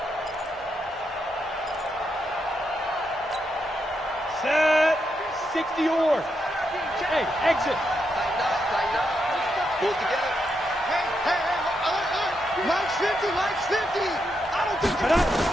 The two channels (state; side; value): normal; both; correlation 0.82